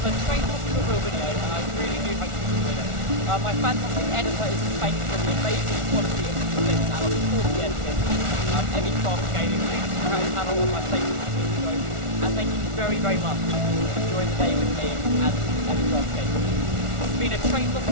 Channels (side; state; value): left; late; 1.4 ms